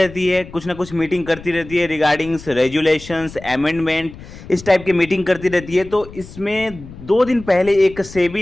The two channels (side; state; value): left; noise; rumble, 16 dB below the sound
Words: है, कुछ ना कुछ मीटिंग करती रहती है रिगार्डिंग्स रेजुलेशंस, अमेंडमेंट, इस टाइप की मीटिंग करती रहती है। तो इसमें 2 दिन पहले एक